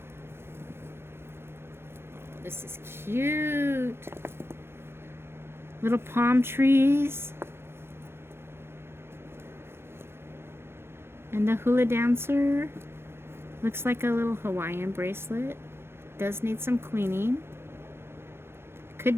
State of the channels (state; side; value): late; left; 0.12 ms